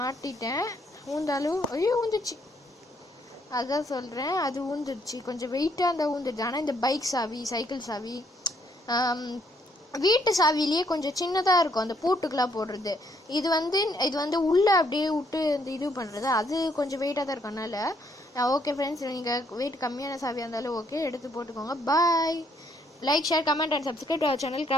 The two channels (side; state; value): both; normal; correlation 0.70